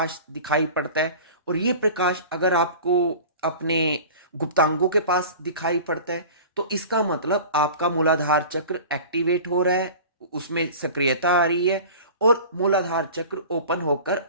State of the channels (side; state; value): both; inverted; correlation -0.38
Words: दिखाई पड़ता है और ये प्रकाश अगर आपको अपने गुप्तांगों के पास दिखाई पड़ता है, तो इसका मतलब आपका मूलाधार चक्र एक्टिवेट हो रहा है, उसमें सक्रियता आ रही है और मूलाधार चक्र ओपन होकर